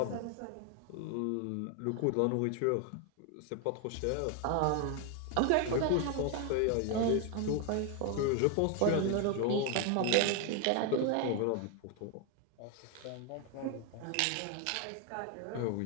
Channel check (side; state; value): both; different; correlation 0.01